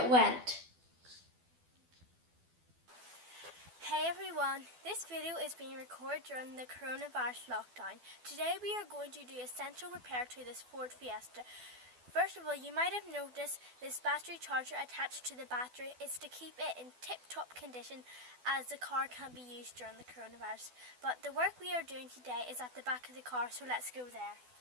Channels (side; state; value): left; late; 12 ms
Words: went. Hey everyone, this video is being recorded during the coronavirus lockdown. Today we are going to do essential repair to this Ford Fiesta. First of all, you might have noticed this battery charger attached to the battery is to keep it in tip-top condition as the car can't be used during the coronavirus. But the work we are doing today is at the back of the car, so let's go there.